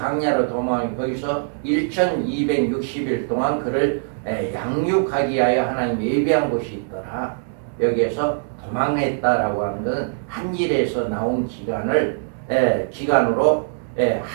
도망하니 거기서 1260일 동안 그를 양육하기 위하여 하나님이 예비한 곳이 있더라. 여기에서 도망했다라고 하는 것은 한 일에서 나온 기간으로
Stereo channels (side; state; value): left; silent; 64 dB below the other